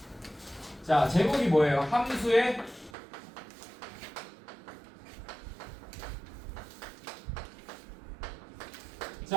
자, 제목이 뭐예요? 함수의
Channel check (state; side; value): drops out; left; at 2.9 s